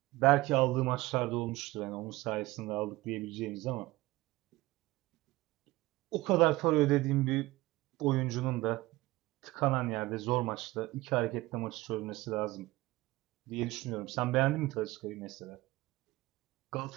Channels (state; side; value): quieter; left; 19.4 dB